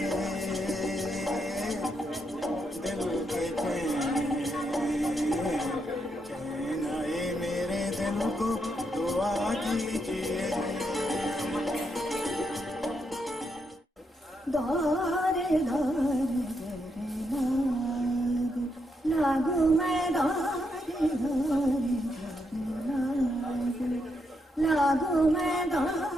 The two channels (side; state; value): both; normal; correlation 0.80